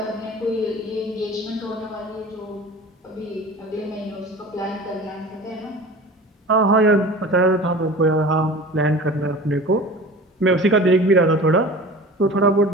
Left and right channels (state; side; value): normal; both; correlation 0.39